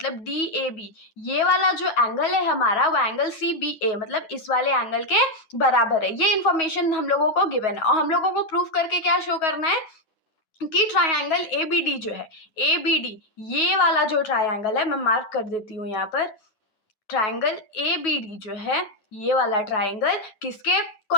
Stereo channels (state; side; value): late; right; 10 ms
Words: DAB ये वाला जो एंगल है हमारा वो एंगल CBA मतलब इस वाले एंगल के बराबर है। ये इन्फॉर्मेशन हम लोगों को गिवन है और हम लोगों को प्रूफ करके क्या शो करना है कि ट्राइंगल ABD जो है, ABD ये वाला जो ट्राइंगल है, मैं मार्क कर देती हूँ यहाँ पर, ट्राइंगल ABD जो है ये वाला ट्राइंगल किसके